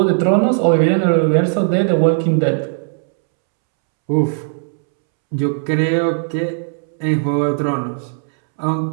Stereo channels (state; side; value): silent; left; 68 dB below the other